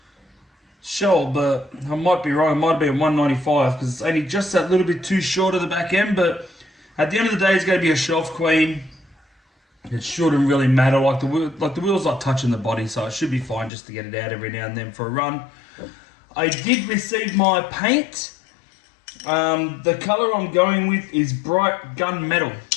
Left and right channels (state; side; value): drops out; right; at 13.7 s